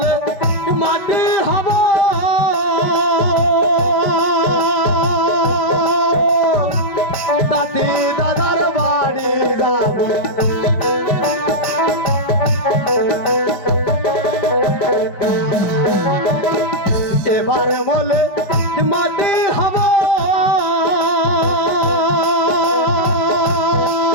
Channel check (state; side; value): late; right; 5.1 ms